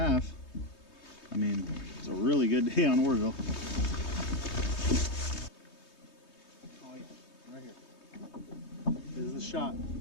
I mean, it's a really good day on Oroville. Right here. This is the shot.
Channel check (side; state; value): right; late; 3.2 ms